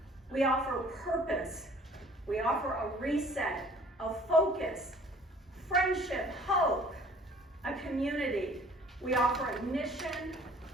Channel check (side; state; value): both; normal; correlation 0.53